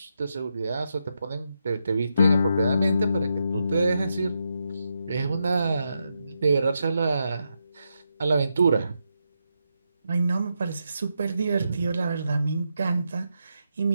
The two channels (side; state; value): both; inverted; correlation -0.84